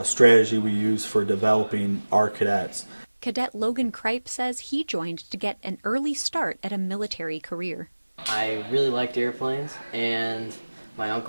strategy we use for developing our cadets. Cadet Logan Kripe says he joined to get an early start at a military career. I really liked airplanes, and my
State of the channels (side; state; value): both; inverted; correlation -1.00